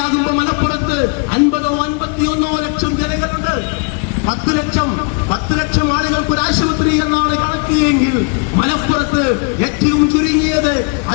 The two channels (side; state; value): right; quieter; 35.7 dB